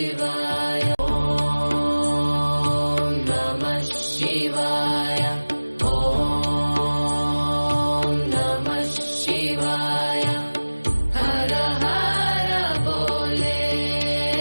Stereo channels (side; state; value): both; inverted; correlation -1.00